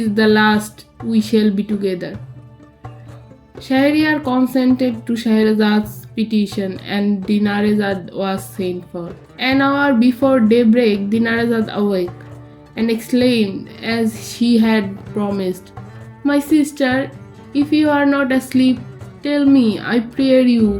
the last we shall be together. Shahryar consented to Scheherazade's petition, and Dinarzade was sent for. An hour before daybreak, Dinarzade awoke and exclaimed, as she had promised, My sister, if you are not asleep, tell me, I pray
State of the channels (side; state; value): both; identical; correlation 1.00